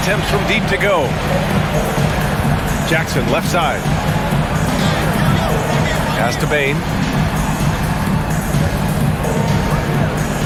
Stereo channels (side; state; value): both; identical; correlation 1.00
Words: from deep to go. Jackson left side. Pass to Bane.